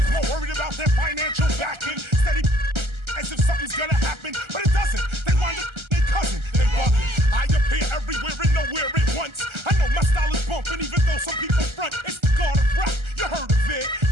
more worried about their financial backing. Steady as if something's gonna happen, but it doesn't. They wind up their cousin. They bugging. I appear everywhere and nowhere at once. I know my style is bumping, even though some people front. It's the God of rap. You heard of it?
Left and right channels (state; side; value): late; left; 1.3 ms